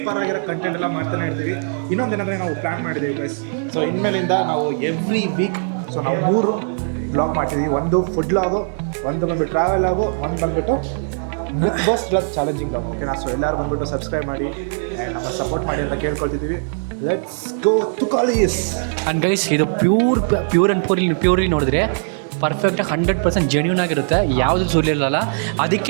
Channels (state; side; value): silent; left; digital silence